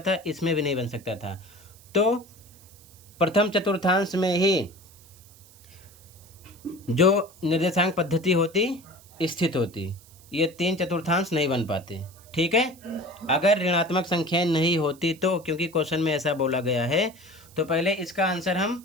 इसमें भी नहीं बन सकता था। तो प्रथम चतुर्थांश में ही जो निर्देशांक पद्धति होती स्थित होती, ये 3 चतुर्थांश नहीं बन पाते, ठीक है। अगर ऋणात्मक संख्याएं नहीं होती तो, क्योंकि क्वेश्चन में ऐसा बोला गया है, तो पहले इसका आंसर हम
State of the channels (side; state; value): right; noise; hiss, 24 dB below the sound